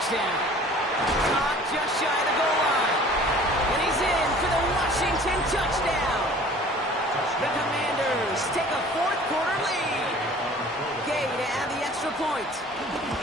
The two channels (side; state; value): both; normal; correlation 0.48